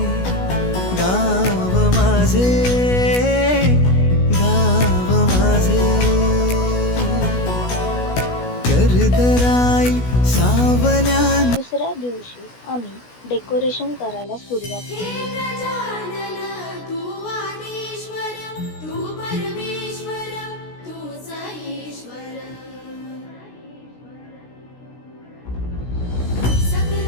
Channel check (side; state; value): right; late; 16 ms